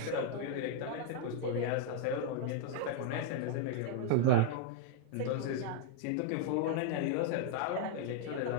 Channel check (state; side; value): different; both; correlation 0.00